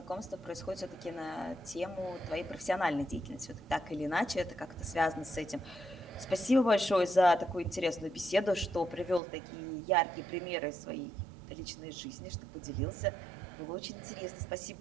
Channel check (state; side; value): drops out; left; at 9.2 s